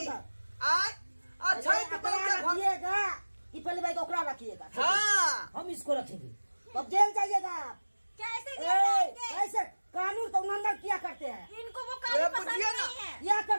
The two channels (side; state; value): both; inverted; correlation -1.00